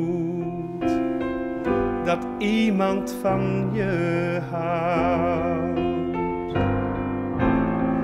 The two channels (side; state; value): both; identical; correlation 1.00